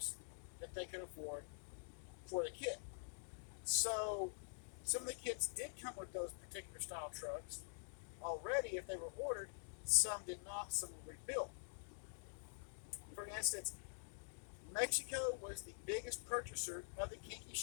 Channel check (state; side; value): silent; right; digital silence